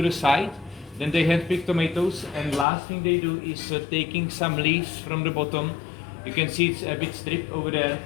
the side. Then they handpick tomatoes, and last thing they do is taking some leaves from the bottom. You can see it's a bit stripped over there,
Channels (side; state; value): right; drops out; at 2.7 s